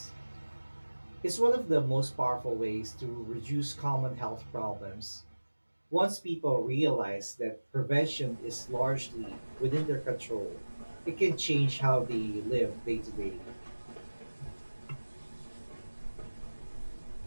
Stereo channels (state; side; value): inverted; both; correlation -1.00